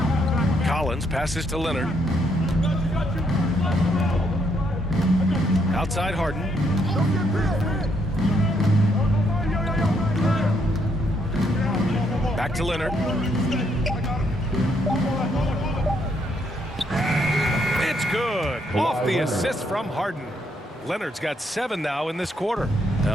Collins passes to Leonard. Outside Harden. Back to Leonard. It's good. Off the assist from Harden. Leonard's got 7 now in this quarter.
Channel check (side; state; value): both; normal; correlation 0.73